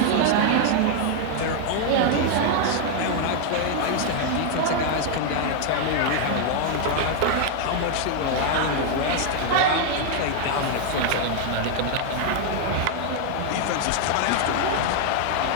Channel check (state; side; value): different; both; correlation 0.00